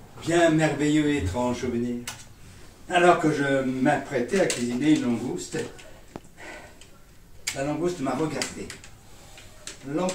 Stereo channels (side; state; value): both; identical; correlation 1.00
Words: bien merveilleux et étrange souvenir. Alors que je m'apprêtais à cuisiner une langouste, la langouste m'a regardé.